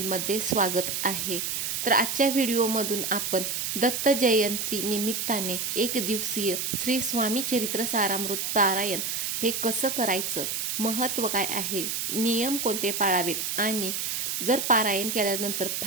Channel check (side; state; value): right; noise; hiss, 1 dB below the sound